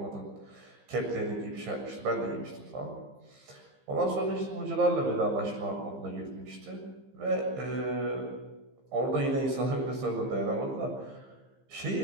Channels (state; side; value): late; left; 15 ms